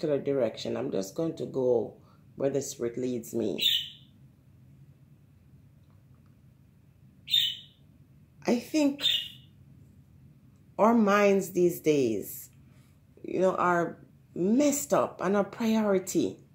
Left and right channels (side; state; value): both; identical; correlation 1.00